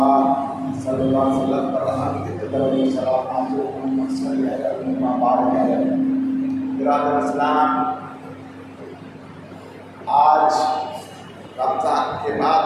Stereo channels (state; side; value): identical; both; correlation 1.00